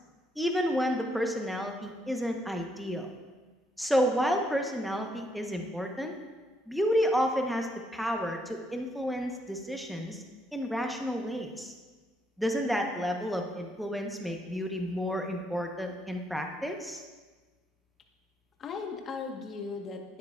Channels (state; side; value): normal; both; correlation 0.74